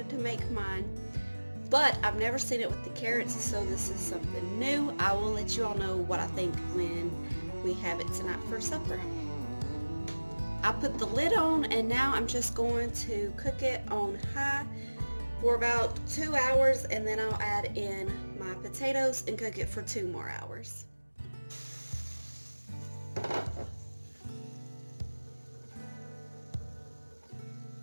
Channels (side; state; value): both; inverted; correlation -1.00